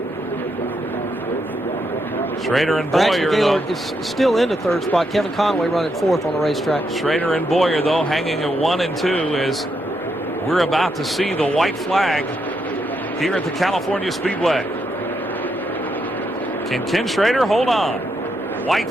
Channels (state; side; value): normal; both; correlation 0.80